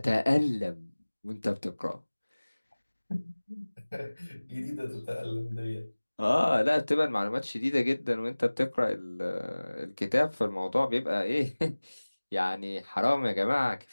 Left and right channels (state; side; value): inverted; both; correlation -1.00